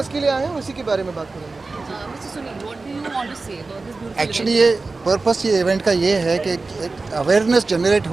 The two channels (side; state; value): left; quieter; 3.7 dB